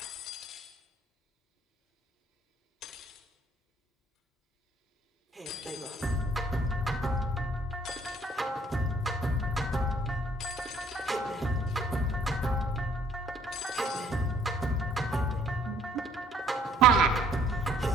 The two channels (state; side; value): normal; both; correlation 0.61